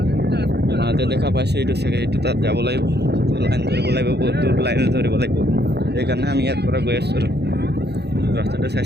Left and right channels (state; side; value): late; left; 0.48 ms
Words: মাজতে দেখা পাইছোঁ এইটো চাগে, এইটো তাত যাব লাগিব। লাইন ধৰিব লাগিব, বহুত দূৰ লাইন ধৰিব লাগিব। সেইকাৰণে আমি ইয়াৰ পৰা গৈ আছোঁ আৰু ৰাস্তাটো